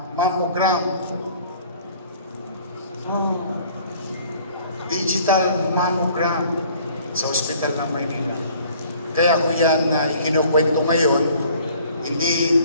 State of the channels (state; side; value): inverted; both; correlation -0.54